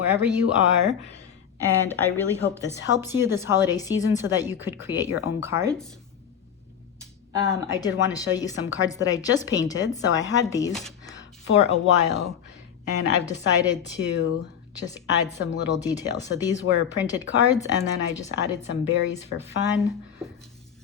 you are. And I really hope this helps you this holiday season so that you could create your own cards. I did want to show you some cards that I just painted. So I had these for a while and I've decided to just add some little details. So these were printed cards and then I just added some berries for fun.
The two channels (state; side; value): quieter; right; 8.3 dB